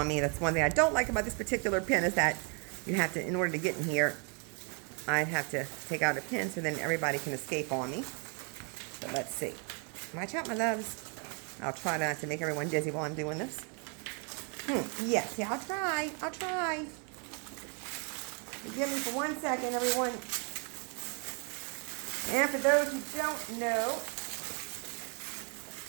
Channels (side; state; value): left; quieter; 37.4 dB